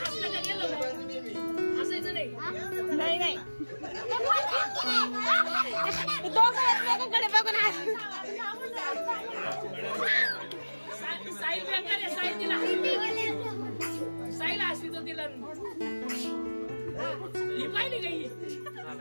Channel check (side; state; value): both; inverted; correlation -1.00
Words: हसलं का गेलं हसायचं नाही नाही दोघं एकमेकांकडे बघून साईल बेकार आहे साईल तिला साईल हसली तो तिला ही पाहिली का ही